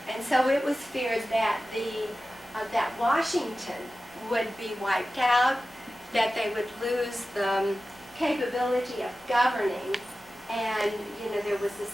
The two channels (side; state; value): both; normal; correlation 0.95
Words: so it was feared that that Washington would be wiped out, that they would lose the capability of governing, and there was this